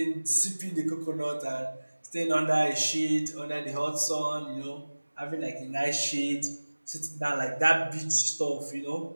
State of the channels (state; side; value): inverted; both; correlation -1.00